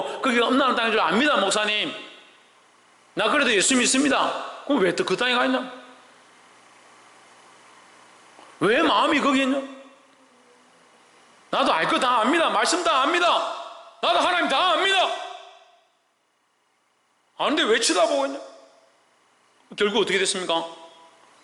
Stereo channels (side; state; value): both; identical; correlation 1.00